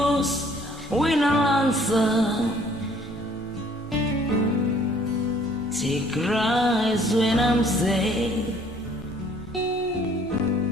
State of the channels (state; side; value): normal; both; correlation 0.58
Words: when I'll answer. She cries when I'm sad.